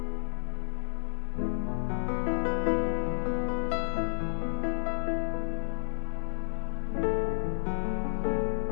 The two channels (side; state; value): right; silent; 57 dB below the other